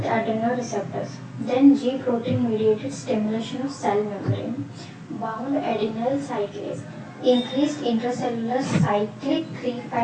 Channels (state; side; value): identical; both; correlation 1.00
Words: adrenoreceptors. Then G protein mediated stimulation of cell membrane. Bound adenyl cyclase. Increased intracellular cyclic